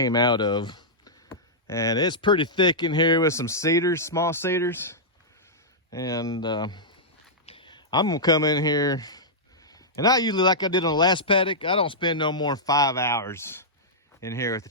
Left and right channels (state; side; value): normal; both; correlation -0.11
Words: out of. And it's pretty thick in here with some cedars, small cedars. And I'm gonna come in here And I usually, like I did on the last paddock, I don't spend no more than 5 hours in here with the